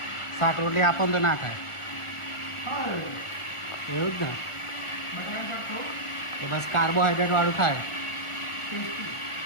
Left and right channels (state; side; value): late; right; 1.4 ms